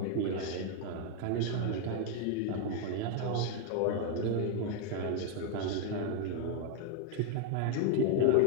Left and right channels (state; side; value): different; both; correlation 0.01